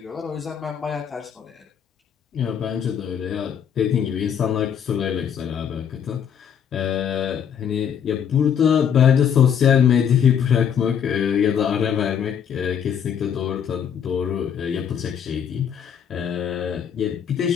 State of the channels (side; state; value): right; quieter; 8.2 dB